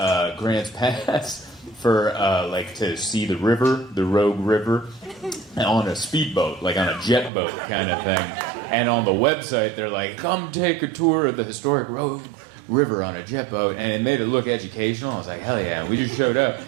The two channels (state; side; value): drops out; left; at 7.3 s